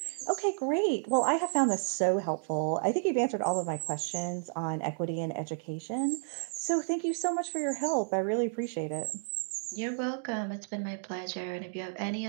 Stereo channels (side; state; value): left; silent; digital silence